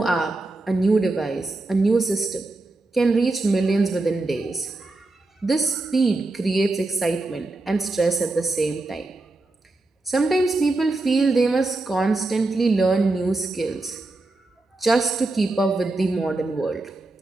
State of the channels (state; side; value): quieter; left; 3.0 dB